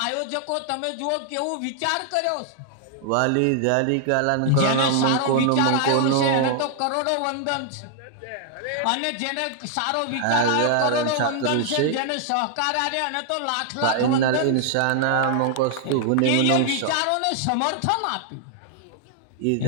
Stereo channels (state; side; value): different; both; correlation 0.00